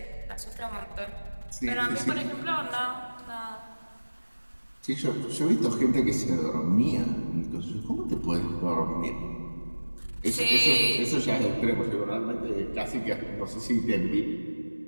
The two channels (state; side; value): inverted; both; correlation -1.00